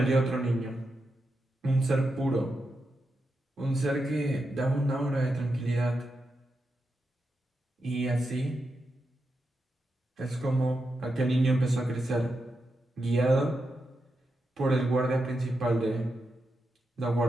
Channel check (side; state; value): both; normal; correlation 0.87